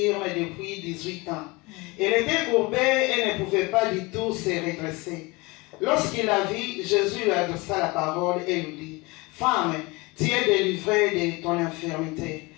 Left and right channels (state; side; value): quieter; right; 24.5 dB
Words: depuis 18 ans. Elle était courbée et ne pouvait pas du tout se redresser. Lorsqu'il la vit, Jésus lui adressa la parole et lui dit, « Femme, tu es délivrée de ton infirmité.